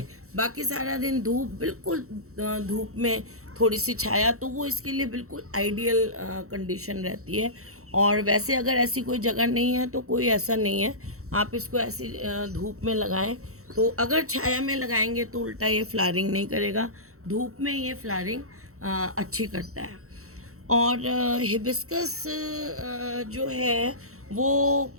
बाकी सारा दिन धूप, बिल्कुल धूप में थोड़ी सी छाया, तो वो इसके लिए बिल्कुल आइडियल कंडीशन रहती है। और वैसे अगर ऐसी कोई जगह नहीं है तो कोई ऐसा नहीं है, आप इसको ऐसी धूप में लगाएं। तो अगर छाया में लगाएंगे तो उल्टा ये फ्लावरिंग नहीं करेगा, धूप में ये फ्लावरिंग अच्छी करता है। और हिबिस्कस जो है वो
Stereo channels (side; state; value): left; late; 0.64 ms